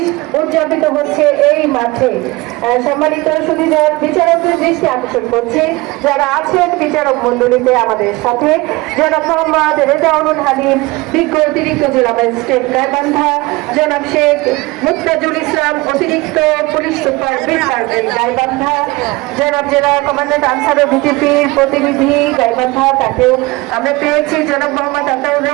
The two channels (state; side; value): quieter; left; 22.4 dB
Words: উদযাপিত হচ্ছে এই মাঠে। সম্মানিত সুধীদের বিচারকদের দৃষ্টি আকর্ষণ করছে যারা আছেন বিচারক মন্ডলীতে আমাদের সাথে জনাব মোহাম্মদ রেজাউল হালিম, বিজ্ঞ অতিরিক্ত জেলা ম্যাজিস্ট্রেট গাইবান্ধা, জনাব শেখ মুস্তাজুল ইসলাম, অতিরিক্ত পুলিশ সুপার সার্জেন্ট গাইবান্ধা, জনাব জেলা কমান্ড্যান্ট আনসারুল বিজেপির প্রতিনিধি গাইবান্ধা, তাকেও আমরা পেয়েছি, জনাব মোহাম্মদ আতাউর